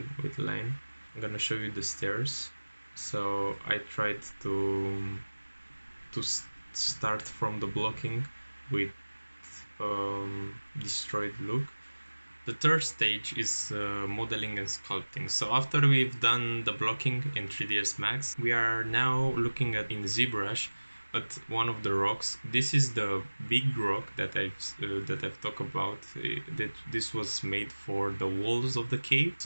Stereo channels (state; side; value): inverted; both; correlation -1.00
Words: with line. I'm gonna show you the stairs. So I tried to start from the blocking with destroyed look. The third stage is modeling and sculpting. So after we've done the blocking in 3ds Max, we are now looking at in ZBrush at one of the rocks. This is the big rock that I've talked about. That this was made for the walls of the cave.